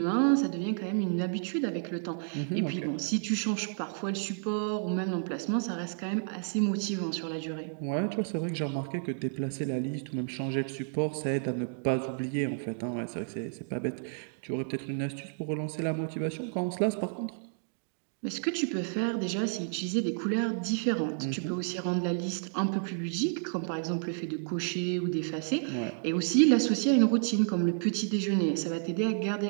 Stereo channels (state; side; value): silent; left; digital silence